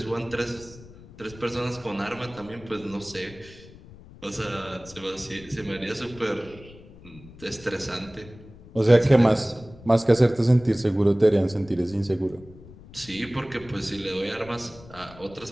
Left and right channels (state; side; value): noise; left; rumble, 20 dB below the sound